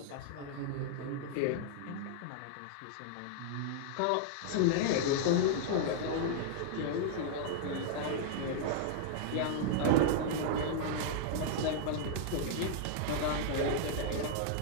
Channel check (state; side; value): different; both; correlation -0.01